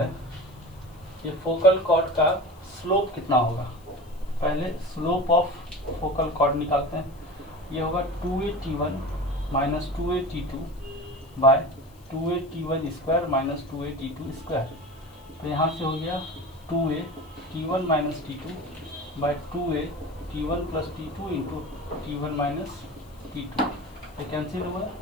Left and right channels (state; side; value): noise; left; hiss, 28 dB below the sound